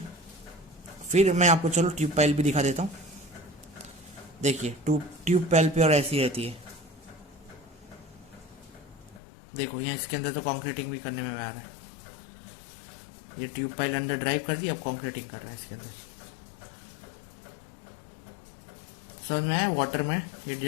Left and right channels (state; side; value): drops out; right; at 9.2 s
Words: फिर मैं आपको चलो ट्यूब पाइल भी दिखा देता हूँ। देखिए ट्यूब पाइल प्योर ऐसी रहती है। देखो यहाँ इसके अंदर तो कंक्रीटिंग भी करने में आ रहा है, ये ट्यूब पाइल अंदर ड्राइव कर दी, अब कंक्रीटिंग कर रहा है इसके अंदर। समझ में आया, वाटर में ये